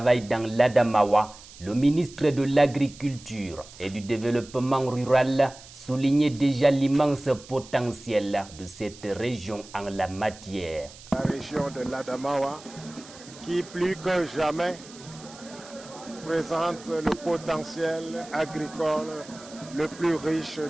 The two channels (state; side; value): noise; right; hiss, 19 dB below the sound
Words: dans l'Adamawa, le ministre de l'Agriculture et du Développement rural soulignait déjà l'immense potentiel de cette région en la matière. La région de l'Adamawa, qui plus que jamais présente le potentiel agricole le plus riche